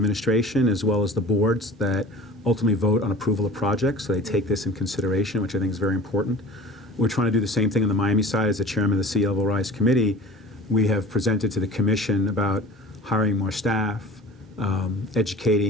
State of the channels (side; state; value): both; normal; correlation 0.41